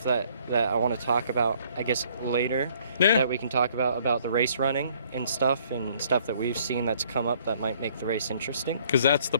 that I want to talk about, I guess, later. Yeah. That we can talk about the race running and stuff that we've seen that's come up that might make the race interesting. Because that's the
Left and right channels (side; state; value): both; inverted; correlation -0.61